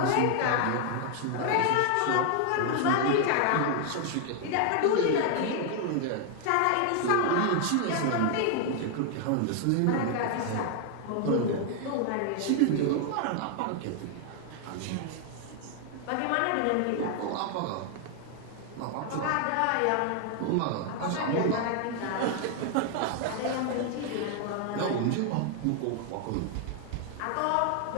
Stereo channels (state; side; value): different; both; correlation 0.00